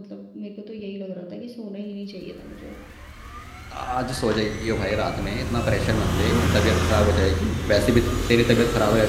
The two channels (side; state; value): both; identical; correlation 1.00